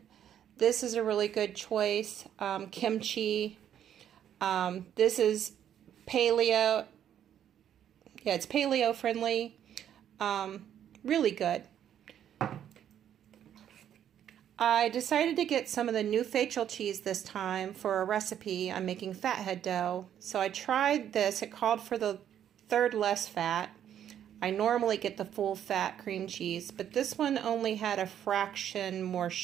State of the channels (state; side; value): quieter; left; 10.0 dB